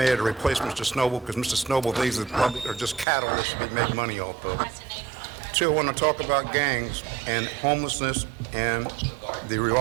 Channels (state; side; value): drops out; left; at 3.1 s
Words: to replace Mr. Snowball because Mr. Snowball thinks that the public are just cattle that should be made money off of. 2, I want to talk about gangs and homelessness and the